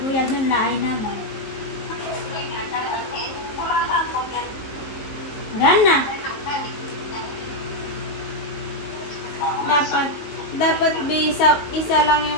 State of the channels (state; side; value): late; right; 18 ms